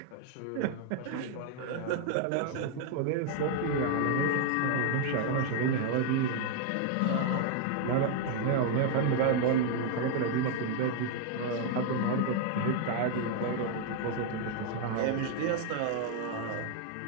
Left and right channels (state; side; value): different; both; correlation 0.00